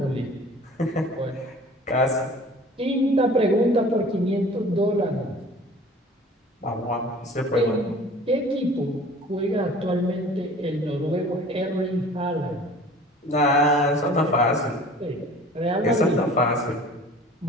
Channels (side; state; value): both; normal; correlation 0.46